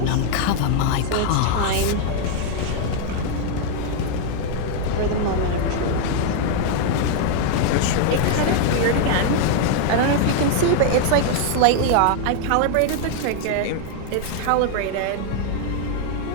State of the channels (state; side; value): different; both; correlation 0.00